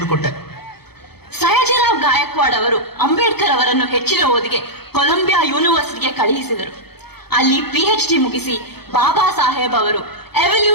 ಕೊಟ್ಟೆ. ಸಯಾಜಿರಾವ್ ಗಾಯಕ್ವಾಡ್ ಅವರು ಅಂಬೇಡ್ಕರ್ ಅವರನ್ನು ಹೆಚ್ಚಿನ ಓದಿಗೆ ಕೊಲಂಬಿಯಾ ಯೂನಿವರ್ಸಿಟಿಗೆ ಕಳುಹಿಸಿದರು. ಅಲ್ಲಿ PhD ಮುಗಿಸಿ ಬಾಬಾ ಸಾಹೇಬ್ ಅವರು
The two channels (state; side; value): late; right; 0.96 ms